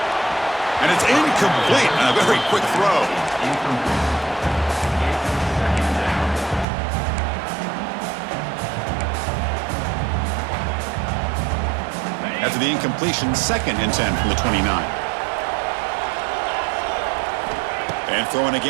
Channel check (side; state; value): left; drops out; at 6.7 s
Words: And it's incomplete on a very quick throw. After the incompletion, 2nd and 10 from the 29. And throwing